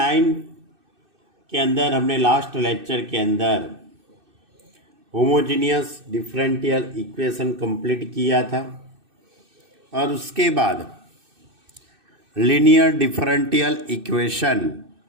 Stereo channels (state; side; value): late; left; 2.6 ms